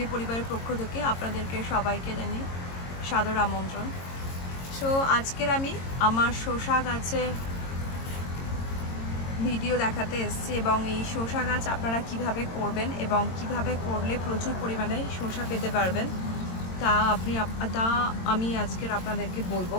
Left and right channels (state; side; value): late; right; 22 ms